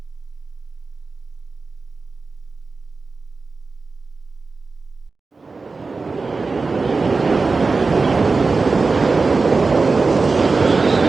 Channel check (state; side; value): quieter; left; 4.1 dB